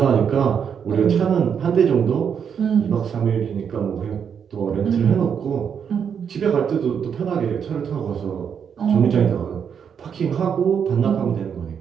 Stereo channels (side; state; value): left; quieter; 7.4 dB